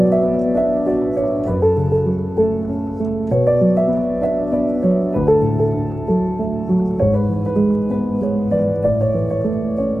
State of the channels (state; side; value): normal; both; correlation 0.95